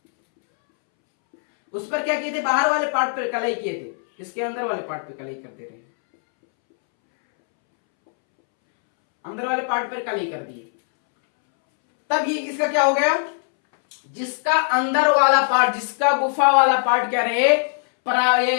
उस पर क्या किए थे, बाहर वाले पार्ट पर कलई किए थे, इसके अंदर वाले पार्ट पे कलई कर दे रहे हैं, अंदर वाले पार्ट पर कलई कर दिए। तब ये इसका क्या हो गया, जिसका अंदर वाला पार्ट, जिसका गुफा वाला पार्ट क्या रहे,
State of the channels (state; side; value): silent; right; 65 dB below the other